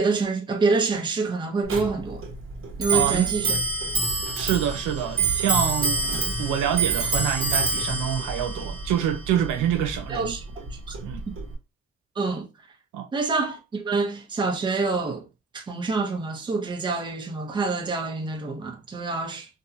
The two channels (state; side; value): quieter; left; 4.7 dB